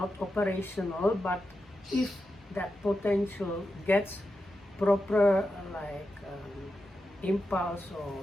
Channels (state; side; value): normal; both; correlation 0.89